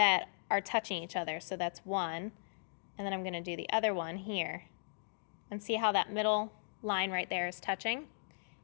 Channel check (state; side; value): silent; right; digital silence